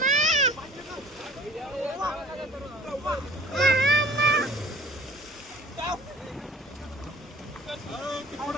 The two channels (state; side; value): normal; both; correlation 0.49